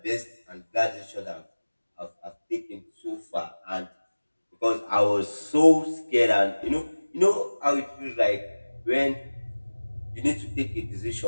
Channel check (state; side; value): inverted; both; correlation -1.00